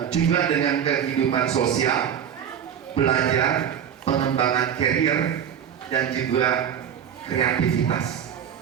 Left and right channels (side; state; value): left; quieter; 8.7 dB